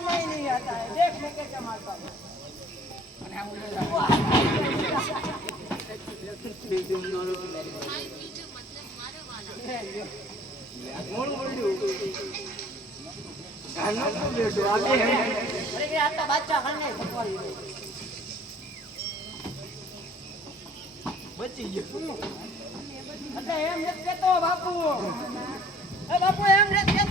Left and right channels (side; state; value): both; normal; correlation 0.53